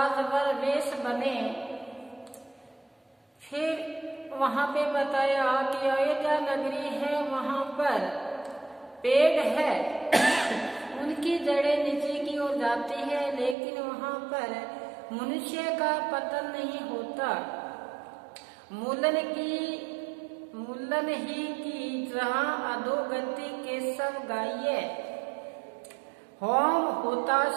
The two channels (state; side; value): drops out; left; at 13.6 s